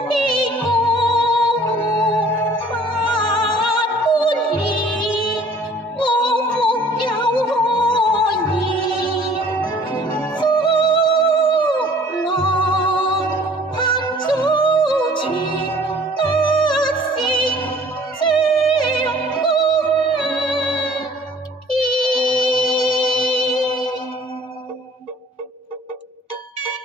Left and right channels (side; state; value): both; normal; correlation 0.53